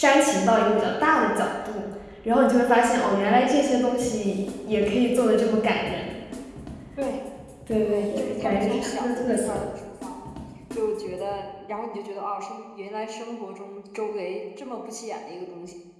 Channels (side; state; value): both; identical; correlation 1.00